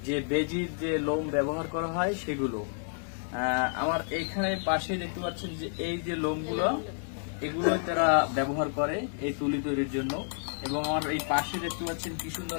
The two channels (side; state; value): right; silent; 58 dB below the other